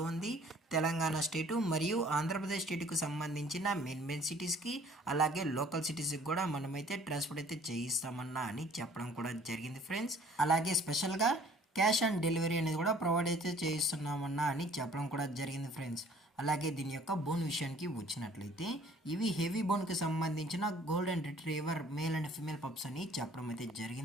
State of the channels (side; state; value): both; normal; correlation 0.55